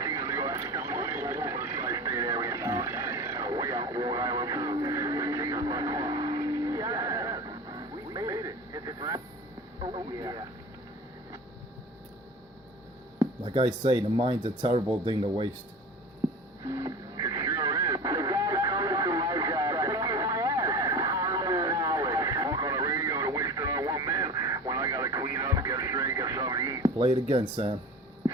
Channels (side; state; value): both; normal; correlation 0.34